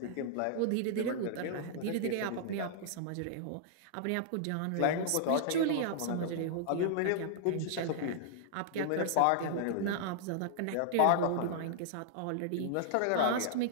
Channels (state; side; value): different; both; correlation -0.01